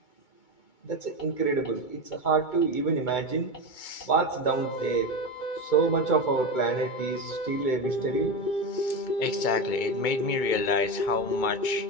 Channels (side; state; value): right; late; 2.2 ms